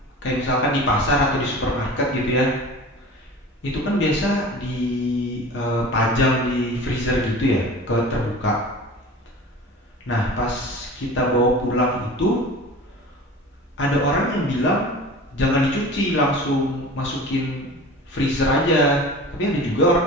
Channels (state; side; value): normal; both; correlation 0.38